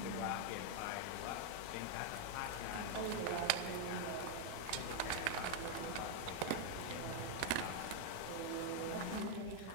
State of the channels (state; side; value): different; both; correlation 0.00